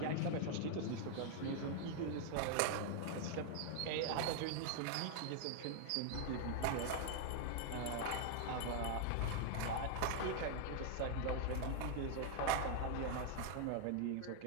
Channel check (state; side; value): different; both; correlation 0.00